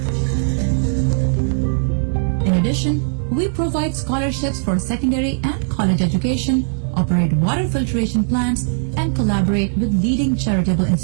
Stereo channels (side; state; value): left; silent; digital silence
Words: In addition, we provide scholarships for secondary and college education, operate water filtration plants, and collaborate with leading charitable